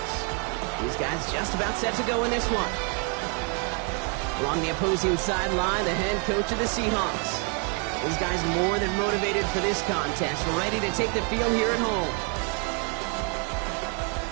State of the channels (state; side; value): quieter; left; 38.1 dB